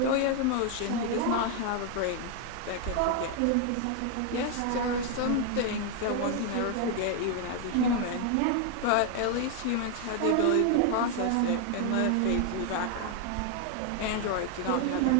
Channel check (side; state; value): both; different; correlation 0.00